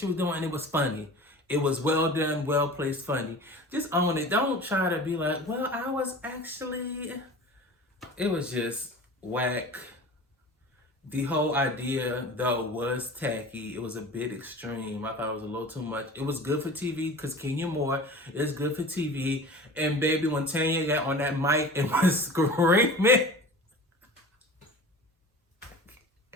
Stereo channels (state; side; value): normal; both; correlation 0.38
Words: was doing, and it was funny. It was well done, well placed, funny. Just own it. Don't try to be like, well, I was actually. It was just whack. The whole idea, though, was tacky. It was a bit extreme. I thought it was a little too much. It was good for TV because Kenya Moore is good for TV. And baby, when Tanya got on that mic and was screaming,